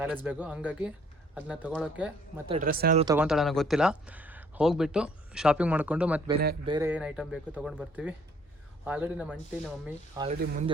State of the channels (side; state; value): both; normal; correlation 0.61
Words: ಬ್ಯಾಗು. ಹಂಗಾಗಿ ಅದನ್ನ ತೊಗೊಳೋಕ್ಕೆ ಮತ್ತು ಡ್ರೆಸ್ ಏನಾದರೂ ತೊಗೊತಾಳೆ ನನಗೆ ಗೊತ್ತಿಲ್ಲ. ಹೋಗಿಬಿಟ್ಟು ಶಾಪಿಂಗ್ ಮಾಡಿಕೊಂಡು ಮತ್ತು ಬೇರೆ ಏನು ಐಟಮ್ ಬೇಕು ತೊಗೊಂಡು ಬರ್ತೀವಿ. ಆಲ್ರೆಡಿ ನಮ್ಮ ಆಂಟಿ ನಮ್ಮ ಮಮ್ಮಿ ಆಲ್ರೆಡಿ